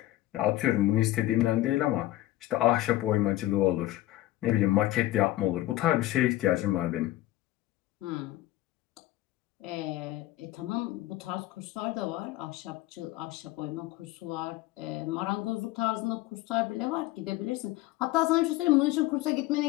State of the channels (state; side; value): quieter; right; 16.2 dB